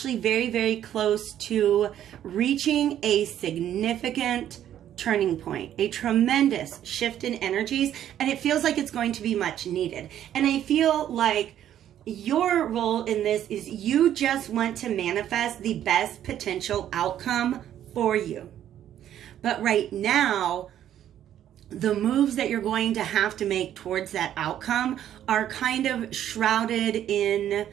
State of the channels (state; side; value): quieter; left; 11.0 dB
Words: very, very close to reaching a significant turning point, a tremendous shift in energies, and it feels like it's going to be much needed. And I feel like your role in this is you just want to manifest the best potential outcome for you. But right now, the moves that you're going to have to make towards that outcome are kind of shrouded in